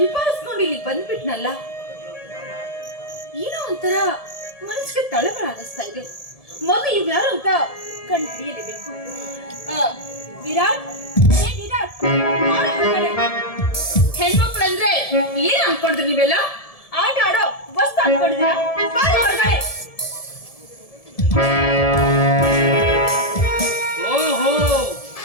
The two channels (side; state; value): right; late; 1.7 ms